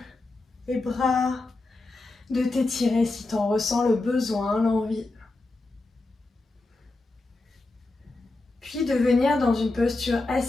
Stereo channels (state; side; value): quieter; right; 3.1 dB